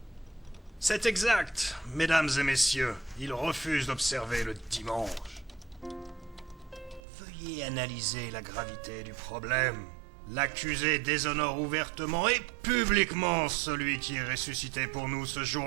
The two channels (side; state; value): left; drops out; at 7.0 s